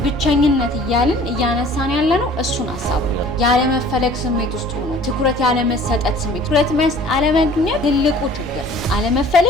ብቸኝነት እያልን እያነሳን ያለ ነው እሱን ሀሳብ ነው። ያለመፈለግ ስሜት ውስጥ ሆኖ ትኩረት ያለመሰጠት ስሜት፣ ትኩረት አለማግኘት ትልቁ ችግር።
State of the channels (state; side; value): normal; both; correlation 0.49